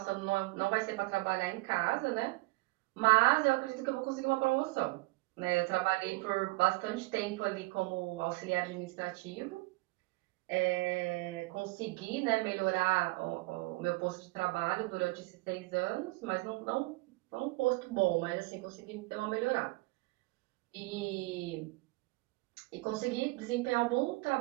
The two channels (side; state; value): left; quieter; 23.6 dB